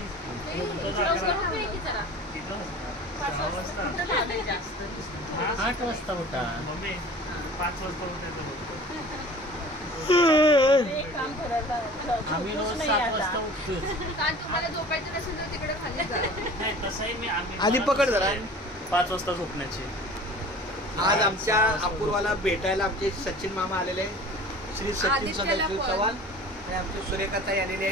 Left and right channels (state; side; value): normal; both; correlation 0.43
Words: 8 वाजता उठा मम्मी. 5 वाजता उठायचं बघतो आम्ही. रोज 7 वाजता उठतो. तुम्हाला झोपायचं नसेल तर तिकडे खाली जा. नाही तसंही मी आधी पकड जरा. 5 वाजता झोपण्याची. आज आमच्या अपूर्वाला भेटायला आमचे सचिन मामा आलेले, श्री सचिन सदाशिव चव्हाण आणि आमची सुरेखाताई आलेली